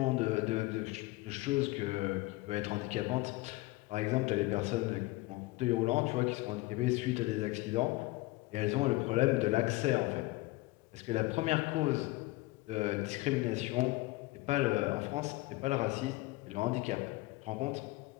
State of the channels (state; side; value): quieter; right; 20.7 dB